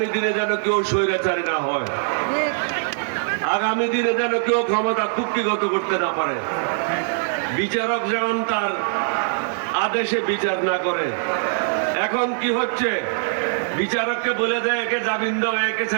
দিনে যেন কেউ স্বৈরাচারী না হয়, আগামী দিনে যেন কেউ ক্ষমতা কুক্ষিগত করতে না পারে, বিচারক যেমন তার আদেশে বিচার না করে। এখন কি হচ্ছে? বিচারককে বলে দেয় একে জামিন দাও, একে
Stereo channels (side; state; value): left; silent; digital silence